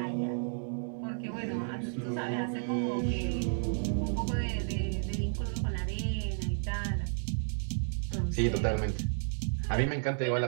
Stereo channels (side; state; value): left; silent; digital silence